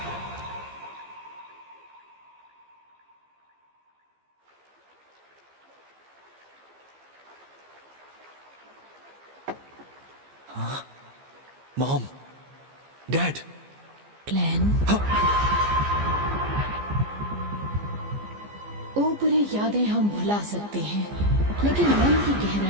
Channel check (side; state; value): left; late; 15 ms